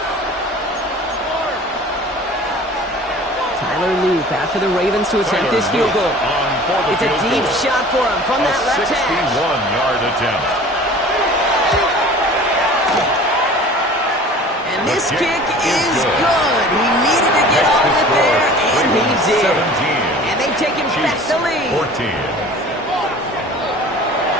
Tyler Loop after the Ravens to attempt this field goal. It's a deep shot for him from that left hash. 61-yard attempt. And this kick is good. He needed to get all of it there, and he did. And they've taken back the lead. 14.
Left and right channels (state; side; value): normal; both; correlation 0.44